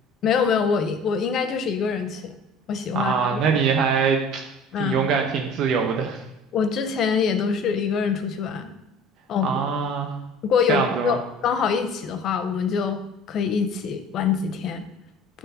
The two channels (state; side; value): normal; both; correlation 0.44